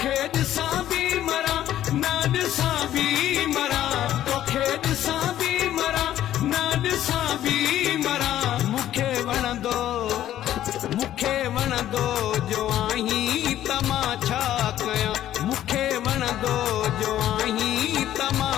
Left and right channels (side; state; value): right; quieter; 12.3 dB